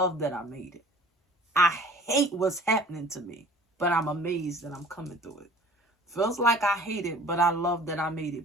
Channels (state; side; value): normal; both; correlation 0.48